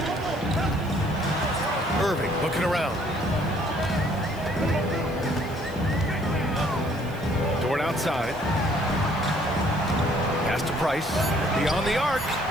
Irving looking around. Dort outside. Pass to Price. Beyond the arc.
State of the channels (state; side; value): noise; left; hiss, 23 dB below the sound